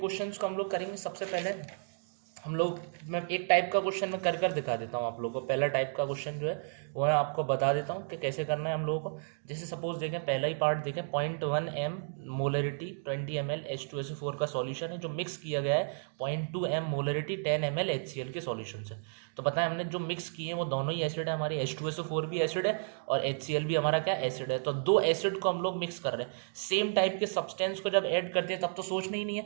को हम लोग करेंगे। सबसे पहले हम लोग, मैं एक टाइप का क्वेश्चन में कर दिखा देता हूँ आप लोगों को। पहला टाइप का क्वेश्चन जो है वो मैं आपको बता देता हूँ कि कैसे करना है हम लोगों को। जैसे सपोज देखें, पहला ही पार्ट देखें, 0.1 m मोलरिटी 20 ml H2SO4 का सॉल्यूशन है जो मिक्स किया गया है 0.2 m मोलरिटी 10 ml HCl के सॉल्यूशन से। तो पता है हमने जो मिक्स किए हैं वो दोनों ही एसिड है, हमारी H2SO4 भी एसिड है और HCl भी हमारा क्या एसिड है। तो दो एसिड को हम लोग मिक्स कर रहे हैं। सेम टाइप के सब्सटेंस को जब ऐड करते हैं तब तो सोचना ही नहीं है।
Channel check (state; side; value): silent; left; digital silence